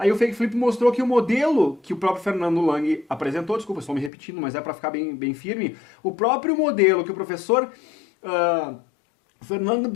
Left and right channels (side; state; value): right; drops out; at 4.1 s